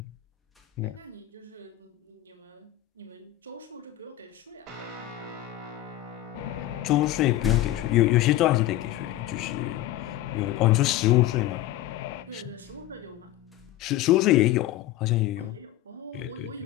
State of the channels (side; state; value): right; quieter; 14.4 dB